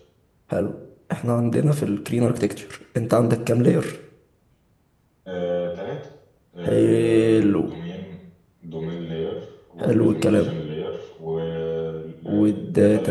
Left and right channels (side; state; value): both; identical; correlation 1.00